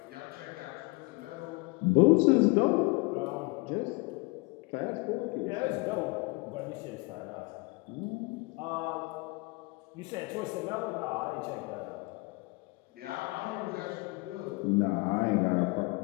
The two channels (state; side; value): quieter; right; 26.3 dB